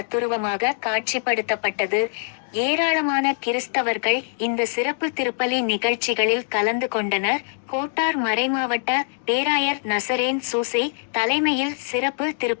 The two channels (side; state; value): right; silent; 62 dB below the other